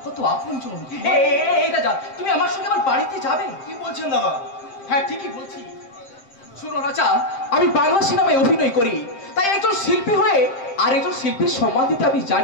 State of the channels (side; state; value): right; late; 7.6 ms